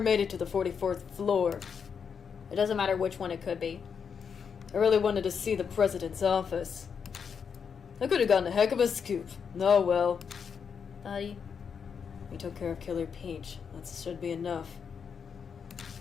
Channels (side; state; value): right; quieter; 6.6 dB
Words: made it to the 44th floor. it doesn't matter which one it could be. I really wanted to see the president's office. I could have gotten a heck of a scoop. Oh well. Buddy. We took care of Killer Peach. That should be enough.